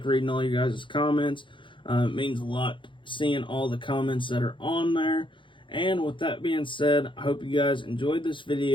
reading all you guys' comments. It means a lot seeing all the comments that are on there. And with that being said, I hope you guys enjoyed this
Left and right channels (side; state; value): right; late; 0.24 ms